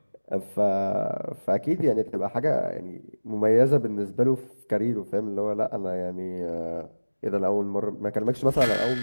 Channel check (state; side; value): inverted; both; correlation -1.00